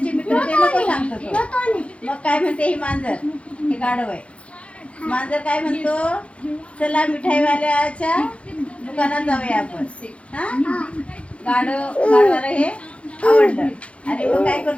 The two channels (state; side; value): late; right; 0.061 ms